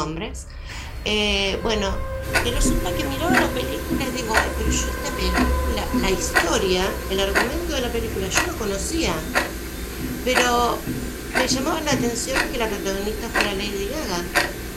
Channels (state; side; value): identical; both; correlation 1.00